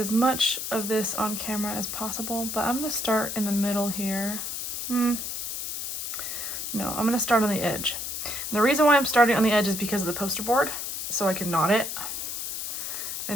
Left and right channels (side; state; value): left; noise; hiss, 4 dB below the sound